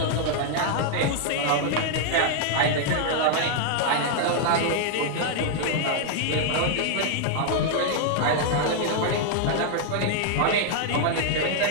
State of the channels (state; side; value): different; both; correlation 0.00